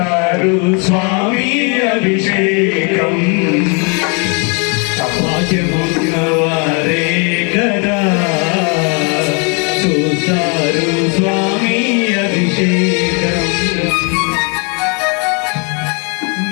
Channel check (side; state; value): right; quieter; 34.6 dB